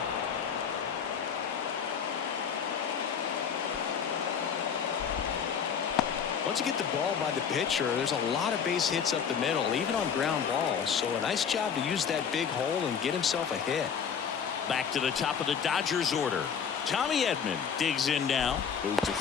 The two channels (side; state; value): right; quieter; 7.1 dB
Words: Once you get the ball by the pitcher, there's a lot of base hits up the middle, even on ground balls. So a nice job to use that big hole and get himself a hit. Back to the top of the Dodgers order. Tommy Edman digs in now. Move to